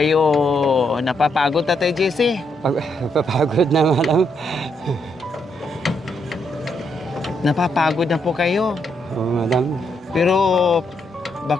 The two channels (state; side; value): normal; both; correlation 0.77